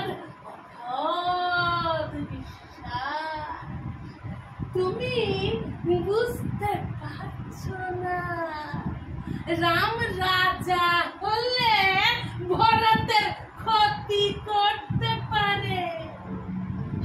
অগাধ বিশ্বাস। তুমি বুঝতে পারছো না, রাম রাজা হলে ভরতের ক্ষতি করতে পারে।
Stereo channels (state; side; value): identical; both; correlation 1.00